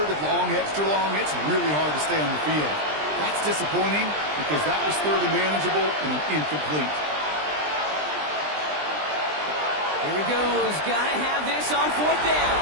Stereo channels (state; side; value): late; left; 20 ms